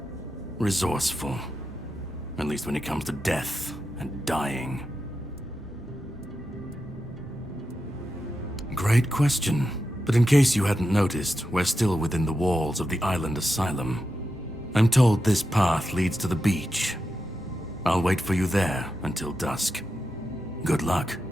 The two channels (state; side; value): normal; both; correlation 0.88